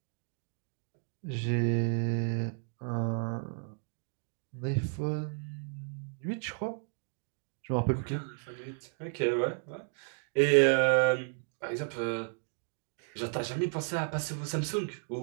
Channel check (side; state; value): left; silent; 56 dB below the other